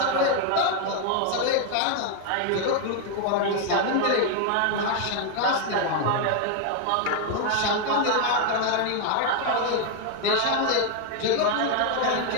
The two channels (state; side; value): different; both; correlation 0.00